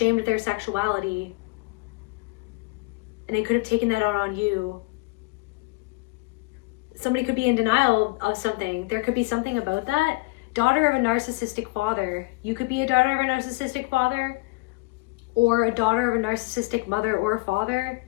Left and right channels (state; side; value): quieter; right; 24.5 dB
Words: of their sexuality. And they could have taken that out on you. Somebody could be in denial of something. There could be something about that. Daughter of a narcissistic father. You could be a daughter of a narcissistic father, or a daughter of a narcissistic mother or father